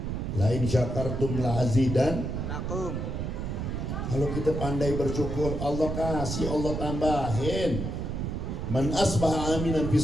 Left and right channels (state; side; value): noise; right; rumble, 3 dB below the sound